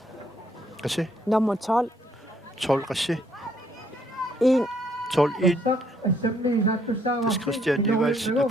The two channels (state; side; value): normal; both; correlation 0.69